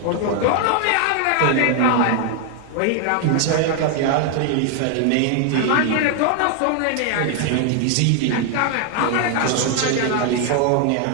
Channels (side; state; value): both; different; correlation 0.00